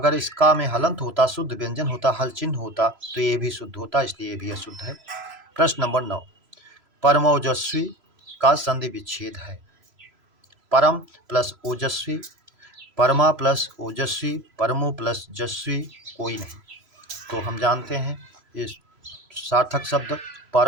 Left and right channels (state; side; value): late; left; 3.0 ms